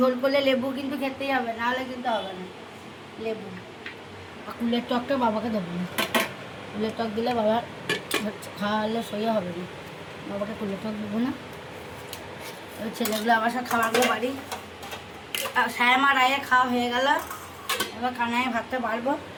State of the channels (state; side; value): identical; both; correlation 1.00